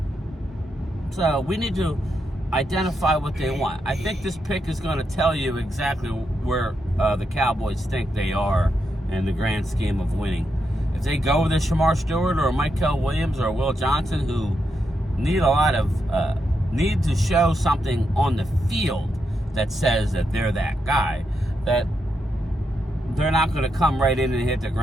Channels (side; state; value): both; normal; correlation 0.83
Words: So we need to identify what they want. I think this pick is going to tell you exactly where the Cowboys think they are in the grand scheme of winning. If they go with a Shamar Stewart or a Michael Williams or a Will Johnson, who need to show something on the field that says that they're that guy, that they're not going to come right in and hit the